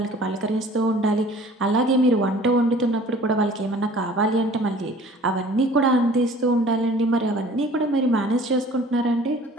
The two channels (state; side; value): normal; both; correlation 0.49